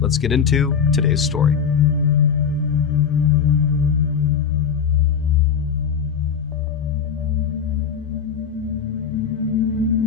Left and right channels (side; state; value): right; quieter; 7.2 dB